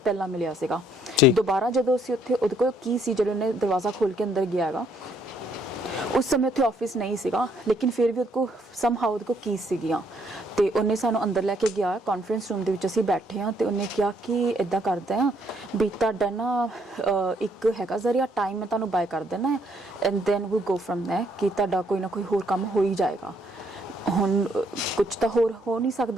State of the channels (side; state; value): both; normal; correlation 0.68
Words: ਪਹਿਲਾਂ ਮਿਲਿਆ ਸੀਗਾ। ਦੁਬਾਰਾ ਜਦੋਂ ਅਸੀਂ ਉੱਥੇ, ਉਹਦੇ ਕੋਲ ਕੀ ਸੀ ਜਦੋਂ ਉਹਨੇ ਦਰਵਾਜ਼ਾ ਖੋਲ੍ਹ ਕੇ ਅੰਦਰ ਗਿਆ ਹੈਗਾ, ਉਸ ਸਮੇਂ ਉੱਥੇ ਆਫਿਸ ਨਹੀਂ ਸੀਗਾ, ਲੇਕਿਨ ਫਿਰ ਵੀ ਉਹਦੇ ਕੋਲ ਸਮਹਾਉ ਉਹਦੇ ਕੋਲ ਕੀਜ਼ ਸੀਗੀਆਂ। ਤੇ ਉਹਨੇ ਸਾਨੂੰ ਅੰਦਰ ਲੈ ਕੇ ਗਿਆ, ਕਾਨਫਰੰਸ ਰੂਮ ਦੇ ਵਿੱਚ ਅਸੀਂ ਬੈਠੇ ਹਾਂ, ਤੇ ਉਹਨੇ ਕਿਹਾ ਕਿ ਇੱਦਾਂ ਕਰਦਾ ਆ ਵੀ ਤੁਹਾਡਾ ਨਾ ਇੱਕ ਹੈਗਾ ਜ਼ਰੀਆ ਟਾਈਮ, ਮੈਂ ਤੁਹਾਨੂੰ ਬਾਏ ਕਰ ਦੇਣਾ and then we go from there, ਕਿ ਤੁਹਾਡਾ ਕੋਈ ਨਾ ਕੋਈ ਹੋਰ ਕੰਮ ਹੋ ਹੀ ਜਾਏਗਾ। ਹੁਣ ਕੁਝ ਤਾਂ ਹੋਰ ਹੋ ਨਹੀਂ